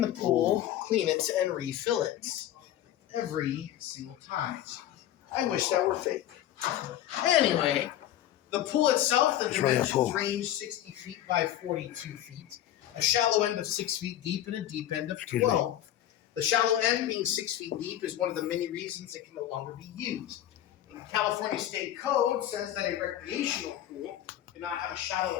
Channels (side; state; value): right; quieter; 12.2 dB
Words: the pool, clean it, and refill it every single time. I wish that were fake. Anyway, the pool itself, the dimensions range 60 feet by 42 feet, a shallow end of 6 feet deep and a deep end of 12. The shallow end, being 6 feet deep, is one of the many reasons it can no longer be used. California State Code says that a recreational pool cannot have a